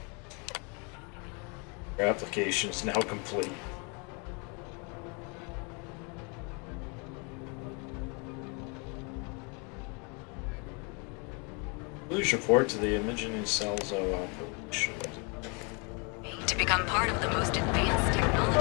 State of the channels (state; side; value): quieter; right; 33.4 dB